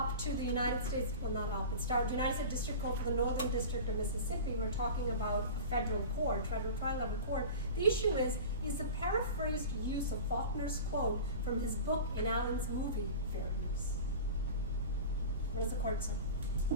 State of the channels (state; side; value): inverted; both; correlation -0.33